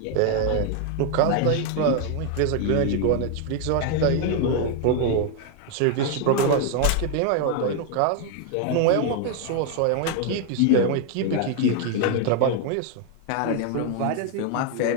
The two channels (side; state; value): both; different; correlation 0.00